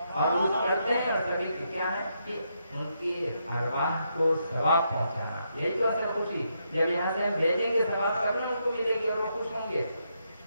اور عرس کرتے ہیں، اور سبھی کی کیا ہے کہ ان کی ارواح کو ثواب پہنچانا، یہی تو اصل خوشی، جب یہاں سے ہم بھیجیں گے ثواب کرنا ان کو ملے گی اور وہ خوش ہوں گے۔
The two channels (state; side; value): inverted; both; correlation -0.80